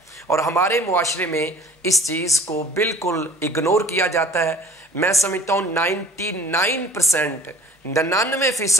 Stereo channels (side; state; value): both; normal; correlation 0.48